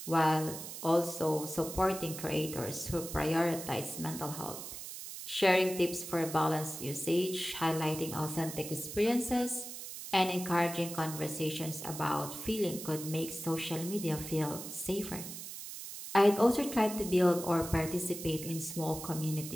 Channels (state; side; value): noise; right; hiss, 9 dB below the sound